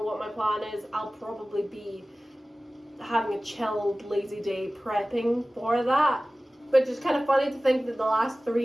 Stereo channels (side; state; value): both; normal; correlation 0.97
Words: what my plan is. I'll probably be having a chilled, lazy day prepping for that. But it's kind of funny to think that the last